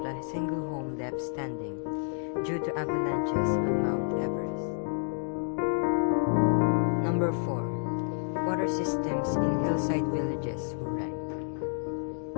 a single home left standing due to avalanches on Mount Everest. Number 4, water systems in hillside villages were wrecked.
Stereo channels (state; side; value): silent; right; digital silence